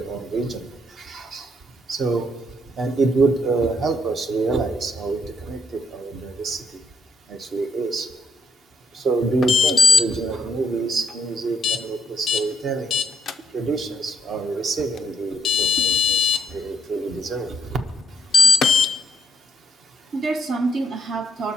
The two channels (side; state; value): both; normal; correlation 0.74